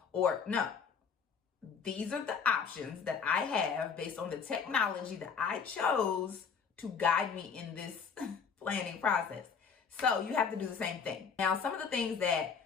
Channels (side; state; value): right; quieter; 6.1 dB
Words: or no. These are the options that I have based on the technology that I chose to guide me in this planning process. So you have to do the same thing. Now, some of the things